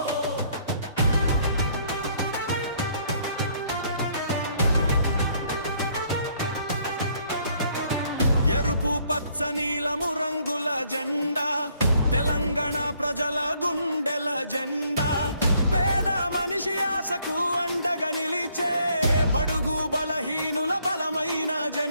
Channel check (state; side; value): inverted; both; correlation -0.66